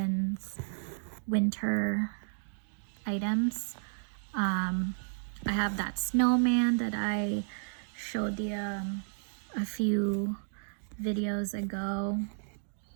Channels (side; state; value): left; silent; digital silence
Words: winter items. I have that snowman that I showed you a few videos ago.